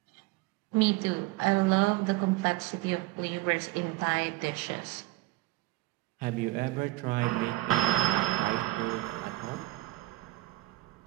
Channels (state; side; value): quieter; left; 19.4 dB